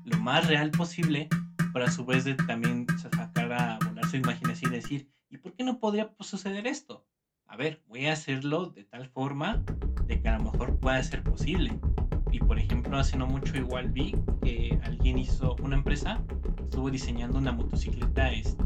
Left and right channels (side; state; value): both; identical; correlation 1.00